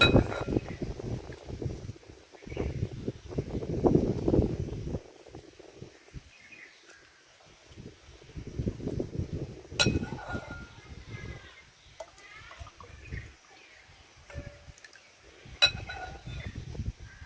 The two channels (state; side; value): identical; both; correlation 1.00